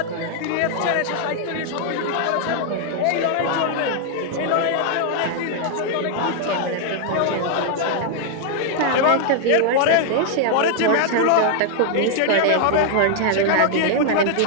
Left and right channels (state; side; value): different; both; correlation 0.00